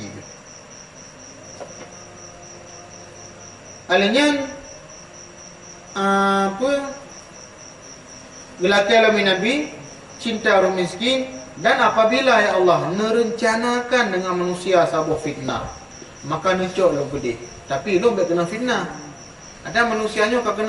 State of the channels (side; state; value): both; identical; correlation 1.00